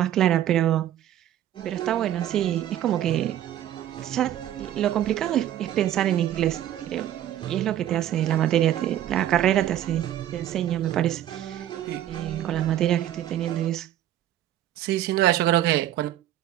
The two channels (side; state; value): left; quieter; 11.9 dB